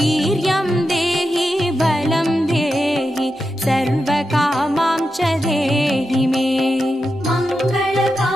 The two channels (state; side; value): normal; both; correlation 0.88